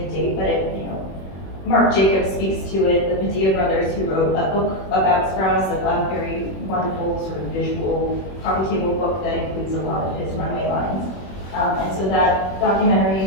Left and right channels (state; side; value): late; right; 21 ms